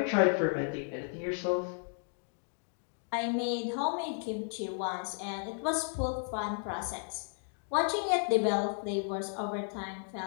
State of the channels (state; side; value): silent; right; 55 dB below the other